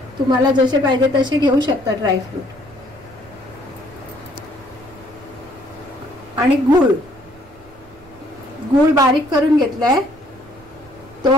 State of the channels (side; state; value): right; noise; rumble, 25 dB below the sound